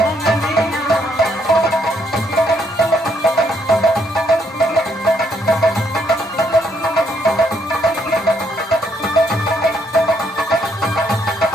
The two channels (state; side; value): normal; both; correlation 0.72